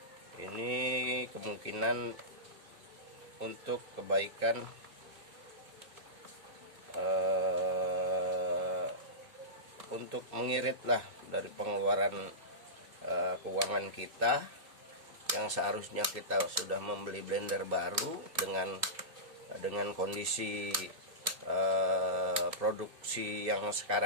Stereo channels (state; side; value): late; left; 2.2 ms